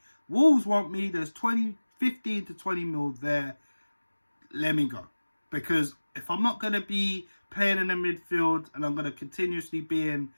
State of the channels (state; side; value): inverted; both; correlation -1.00